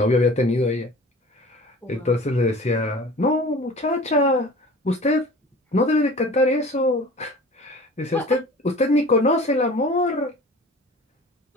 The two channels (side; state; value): both; normal; correlation 0.42